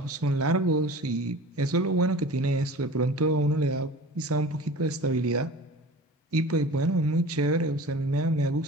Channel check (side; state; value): both; normal; correlation 0.39